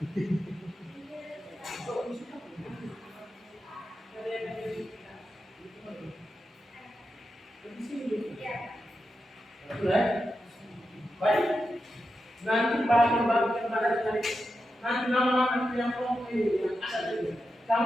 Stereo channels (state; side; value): normal; both; correlation 0.89